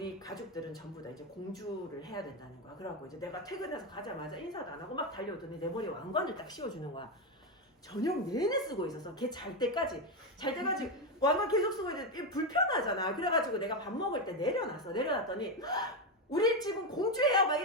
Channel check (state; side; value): normal; both; correlation 0.10